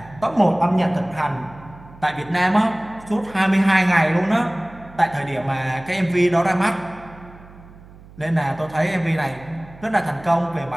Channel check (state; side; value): noise; right; hum, 21 dB below the sound